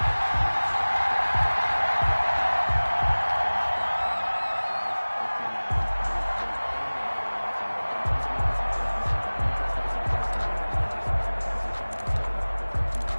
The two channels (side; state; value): both; inverted; correlation -1.00